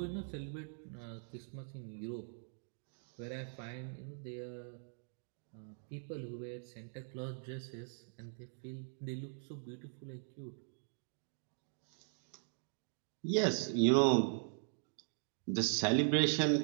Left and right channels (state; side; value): silent; left; digital silence